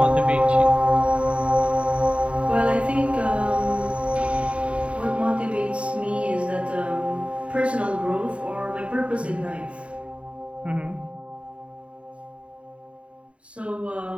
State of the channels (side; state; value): left; late; 0.062 ms